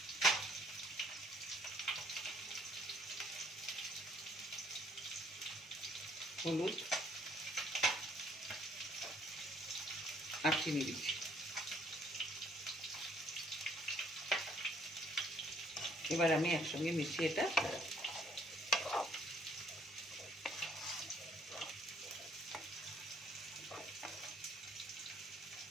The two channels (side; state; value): both; normal; correlation 0.64